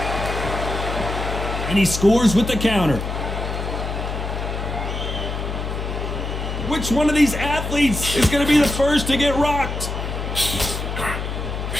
And he scores with the counter. Which one of these athletes is going to be the first to get rocked?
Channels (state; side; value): noise; left; hum, 4 dB below the sound